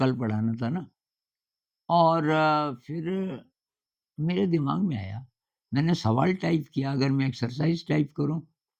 पढ़ाना था ना। और फिर मेरे दिमाग में आया, मैंने सवाल टाइप किया, अगर मैं एक्सरसाइज़ टाइप करूँ,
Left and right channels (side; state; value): both; identical; correlation 1.00